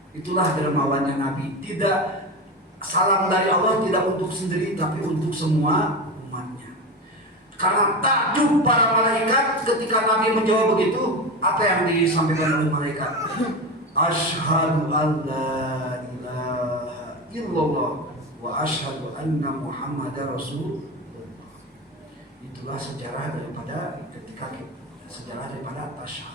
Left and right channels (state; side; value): normal; both; correlation 0.22